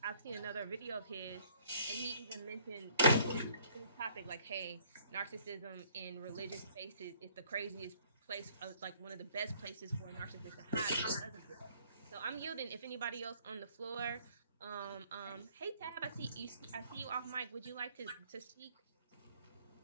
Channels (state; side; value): inverted; both; correlation -0.60